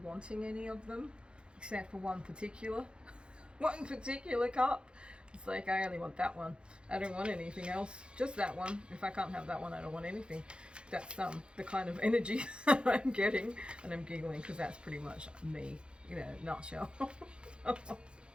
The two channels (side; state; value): left; late; 0.055 ms